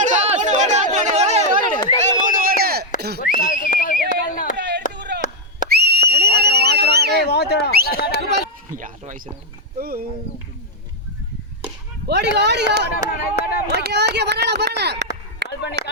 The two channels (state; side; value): normal; both; correlation 0.00